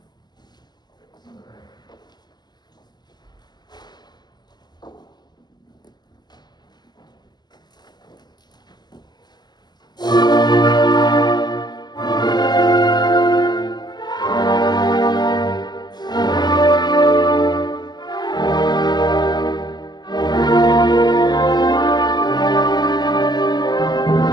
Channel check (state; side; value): late; right; 0.21 ms